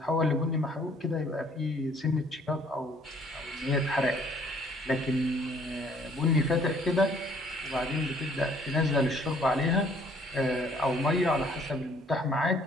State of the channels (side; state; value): both; normal; correlation 0.60